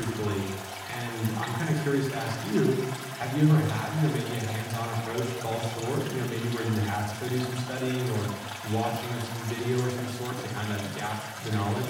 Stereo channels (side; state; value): both; identical; correlation 1.00